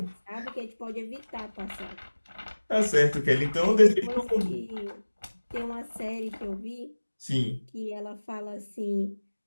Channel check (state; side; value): inverted; both; correlation -1.00